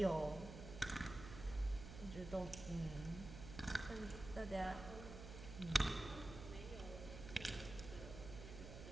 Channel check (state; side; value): noise; right; hum, 10 dB below the sound